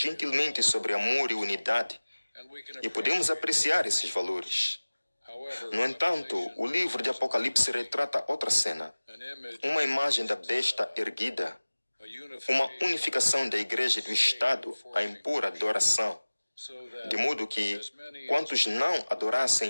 sobre amor e unidade, e podemos apreciar esses valores. No entanto, o livro de Apocalipse retrata outra cena, uma imagem da besta erguida, uma unificação da igreja e do Estado a impor adoração, de modo que quantos não adorassem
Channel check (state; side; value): inverted; both; correlation -1.00